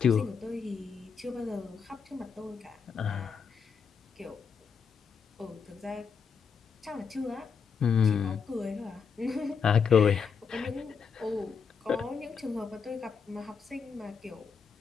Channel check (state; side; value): quieter; right; 6.1 dB